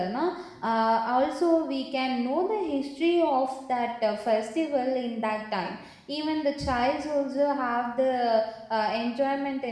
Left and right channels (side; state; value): both; identical; correlation 1.00